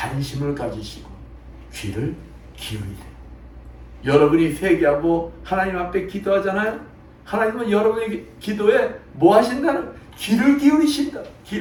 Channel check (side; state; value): both; identical; correlation 1.00